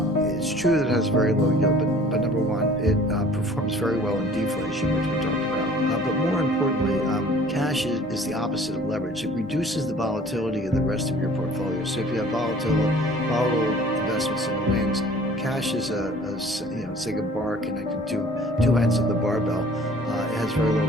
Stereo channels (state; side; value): normal; both; correlation 0.50